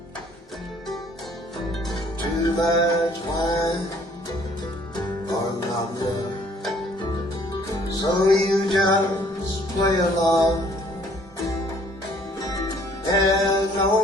Too much wine or not enough, so you just play along. There's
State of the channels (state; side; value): normal; both; correlation 0.59